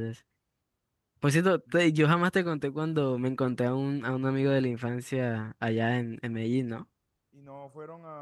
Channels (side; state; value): both; identical; correlation 1.00